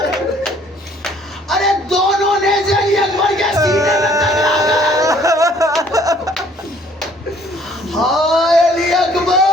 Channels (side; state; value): both; normal; correlation 0.59